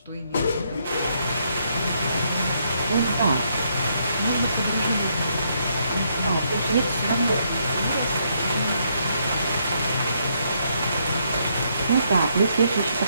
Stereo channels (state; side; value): inverted; both; correlation -0.74